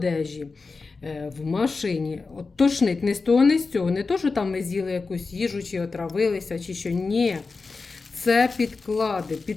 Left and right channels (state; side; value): quieter; right; 4.2 dB